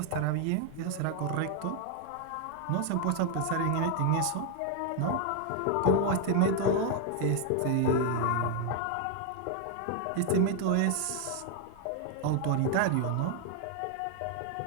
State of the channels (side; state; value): both; different; correlation 0.00